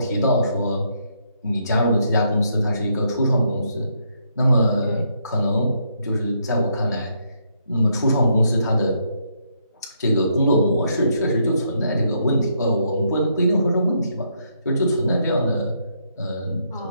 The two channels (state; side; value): inverted; both; correlation -0.75